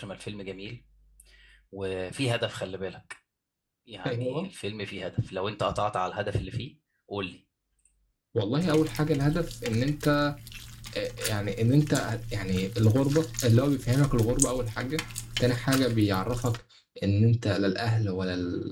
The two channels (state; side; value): identical; both; correlation 1.00